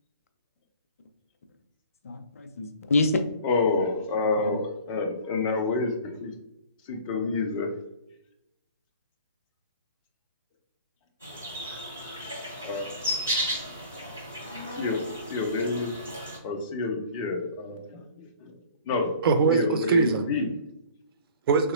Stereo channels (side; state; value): both; inverted; correlation -0.47